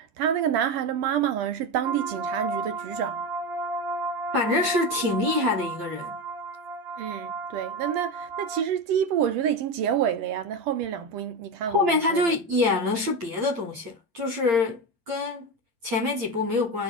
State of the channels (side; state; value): left; late; 8.7 ms